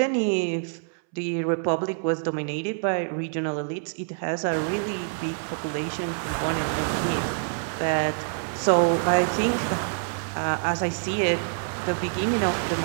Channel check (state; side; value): silent; left; 61 dB below the other